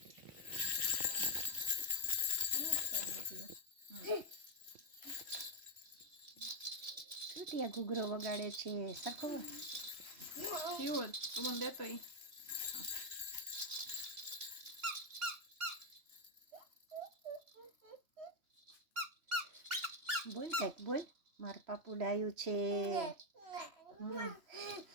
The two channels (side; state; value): left; late; 3.1 ms